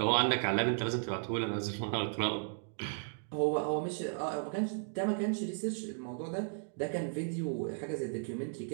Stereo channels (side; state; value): left; silent; digital silence